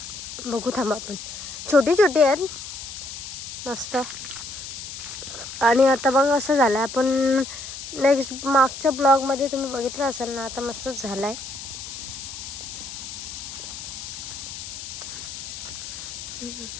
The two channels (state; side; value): noise; left; hiss, 9 dB below the sound